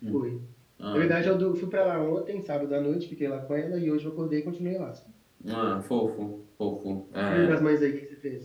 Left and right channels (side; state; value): both; identical; correlation 1.00